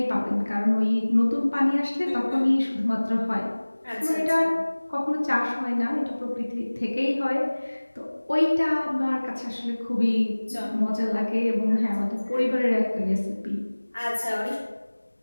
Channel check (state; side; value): inverted; both; correlation -1.00